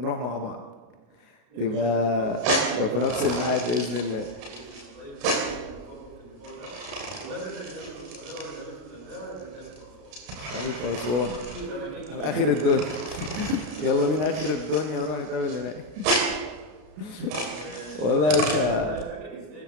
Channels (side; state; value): left; late; 33 ms